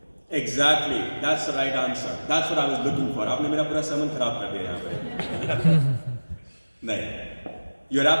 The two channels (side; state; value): both; inverted; correlation -1.00